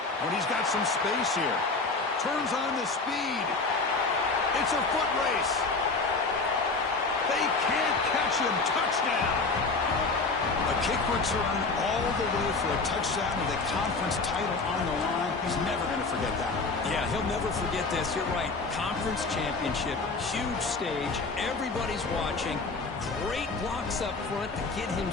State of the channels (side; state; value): right; quieter; 3.9 dB